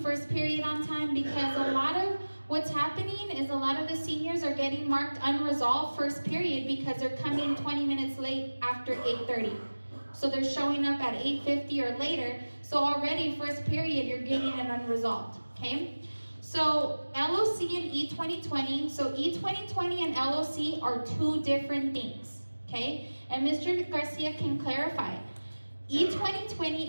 period on time, because a lot of what's happening is a lot of the seniors are getting marked unresolved first period because they're coming 20 minutes late after 8:30. So they're showing up at 8:50 or later. So already first period, you're getting it unresolved, okay? So LOC and E2020, so E2020 and LOC are two different things, okay? And Mr. Garcia can clarify.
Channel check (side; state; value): both; inverted; correlation -1.00